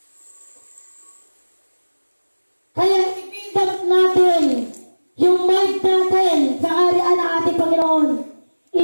Kaya i-build natin yung mind natin sa kaharian ng ating Panginoon.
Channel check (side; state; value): both; inverted; correlation -1.00